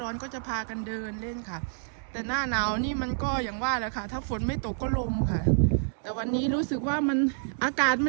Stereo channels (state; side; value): silent; left; digital silence